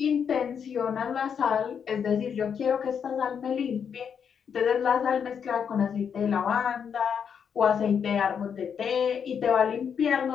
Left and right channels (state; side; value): quieter; right; 7.3 dB